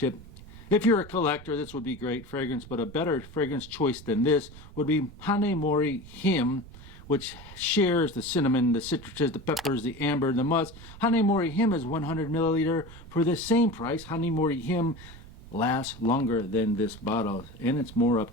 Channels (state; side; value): noise; right; rumble, 18 dB below the sound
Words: If you're a collector, this would be great fragrance, but a better fragrance choice than this would be Hanemori Him, which shares the cinnamon, the citruses, the peppers, the amber, the musk. Hanemori Him is 100 milliliter for the same price. Hanemori Him lasts longer than this bottle, and it's more up